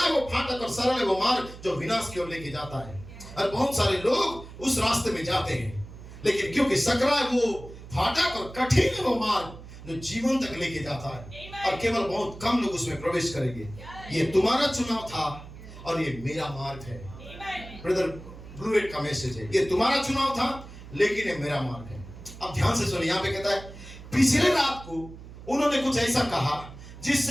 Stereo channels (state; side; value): noise; right; hum, 15 dB below the sound